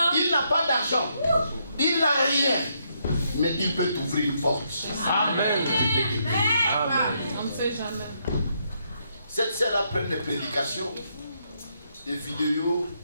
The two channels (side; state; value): both; inverted; correlation -0.76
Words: Il n'a pas d'argent, il n'a rien, mais il peut t'ouvrir une porte. Amen. On ne sait jamais. Cette sœur a pris des prédications, des vidéos,